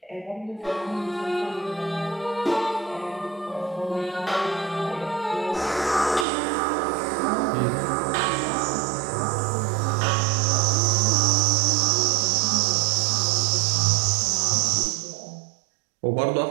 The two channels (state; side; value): drops out; left; at 6.2 s